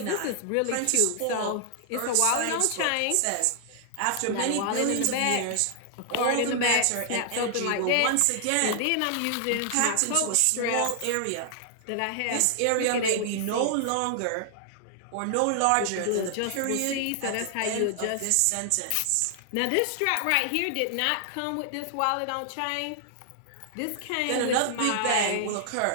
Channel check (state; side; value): different; both; correlation 0.00